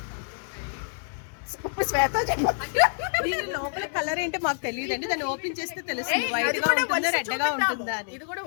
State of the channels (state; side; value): silent; right; 60 dB below the other